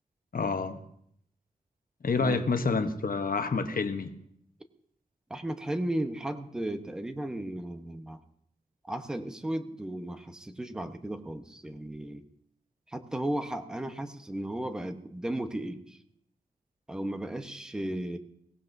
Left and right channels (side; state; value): both; normal; correlation 0.69